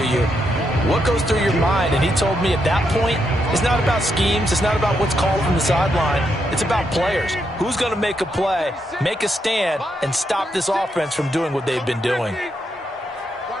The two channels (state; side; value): normal; both; correlation 0.80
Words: you, what goes through your mind? And he told me at that point, it's not about schemes. It's not about what's called from the sideline. It's about players. Who's going to make a play, make a stand, and stop this offense from doing what they've been doing?